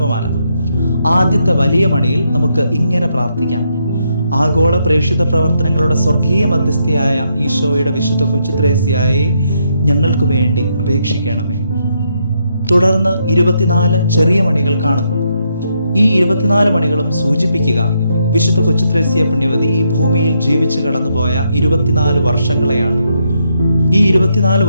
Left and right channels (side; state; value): both; inverted; correlation -0.78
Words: ആദ്യത്തെ വലിയ മണിയിൽ നമുക്ക് ഇങ്ങനെ പ്രാർത്ഥിക്കാം: ആഗോള പ്രേക്ഷിത പ്രവർത്തനങ്ങളുടെ സ്വർഗീയ മധ്യസ്ഥയായ ഈശോയുടെ വിശുദ്ധ കൊച്ചുത്രേസ്യയെ ഞങ്ങൾക്ക് വേണ്ടി അപേക്ഷിക്കണമേ. തുടർന്ന് 24 ചെറിയ മണികൾ കാണുന്നു. ഈ 24 മണികളും സൂചിപ്പിക്കുക വിശുദ്ധ കൊച്ചുത്രേസ്യ പുണ്യവതി ഈ ഭൂമിയിൽ ജീവിച്ചു കടന്നുപോയ 24 വർഷങ്ങളെയാണ്. ഈ 24